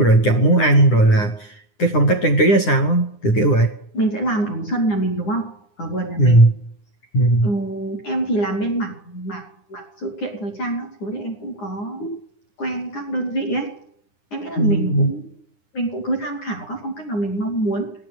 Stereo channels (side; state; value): right; late; 9.8 ms